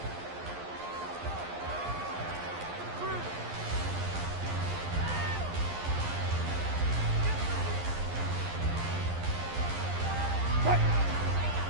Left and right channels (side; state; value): left; late; 11 ms